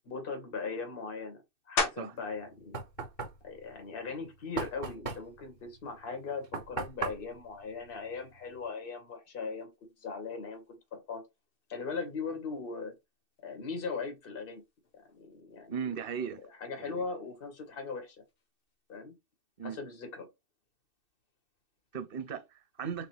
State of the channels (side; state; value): right; late; 2.6 ms